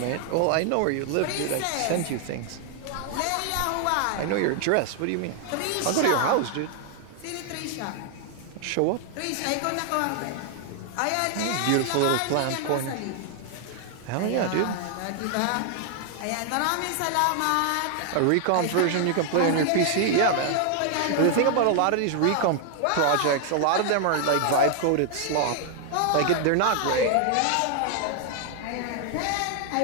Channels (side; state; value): both; different; correlation 0.00